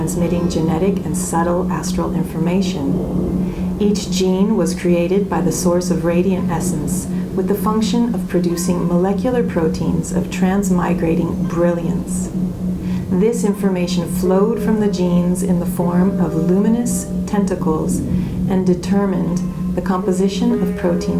genetic and subtle astral information. Each gene was created by the source of radiant essence with the function of producing molecular proteins of transmigrating brilliance. This information flowed from the genes in the form of luminous tentacles and determined the composition of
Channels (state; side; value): identical; both; correlation 1.00